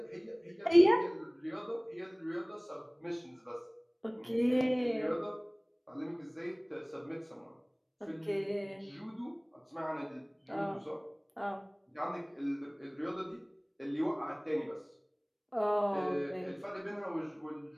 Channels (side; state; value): both; identical; correlation 1.00